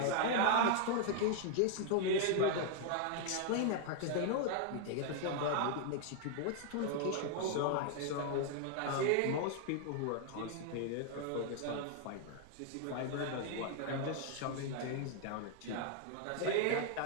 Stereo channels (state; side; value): different; both; correlation 0.00